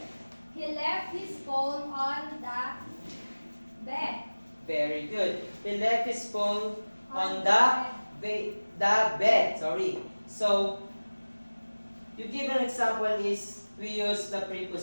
He left his phone on the bed. Very good. He left his phone on the bed. Sorry. So, you give an example is we use the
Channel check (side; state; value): both; inverted; correlation -1.00